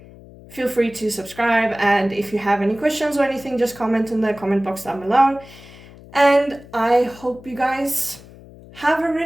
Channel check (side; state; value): left; noise; hum, 20 dB below the sound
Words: feel free to subscribe. And if you have any questions or anything, just comment in the comment box down below. And I hope you guys have a